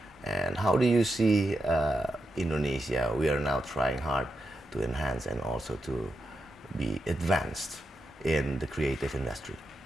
And how do you see Indonesia? We are now trying hard to enhance and also to be advanced in the creative industry.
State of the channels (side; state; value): both; normal; correlation 0.86